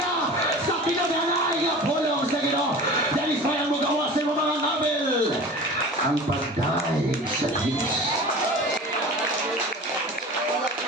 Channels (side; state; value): both; normal; correlation 0.37